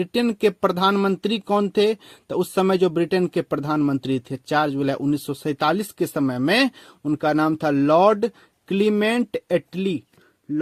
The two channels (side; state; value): both; identical; correlation 1.00